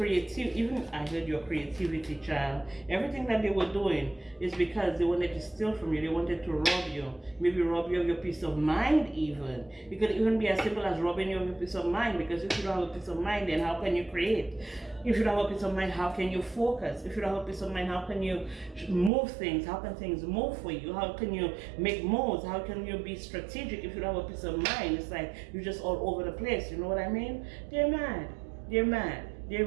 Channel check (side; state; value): left; drops out; at 19.1 s